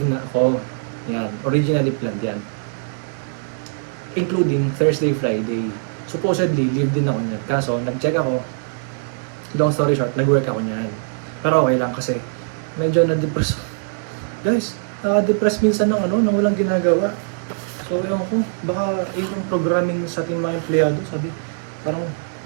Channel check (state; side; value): silent; left; digital silence